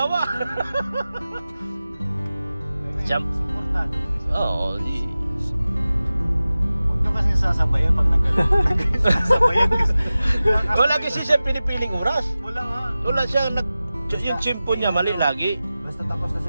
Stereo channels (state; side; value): inverted; both; correlation -0.96